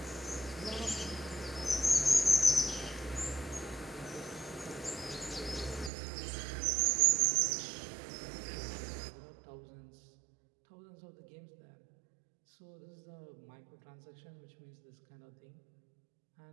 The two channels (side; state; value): left; drops out; at 5.9 s